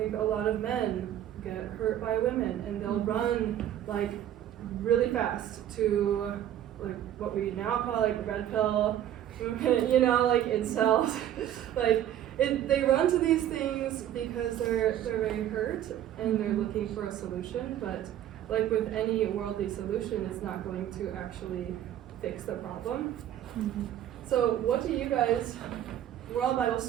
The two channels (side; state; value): left; quieter; 11.4 dB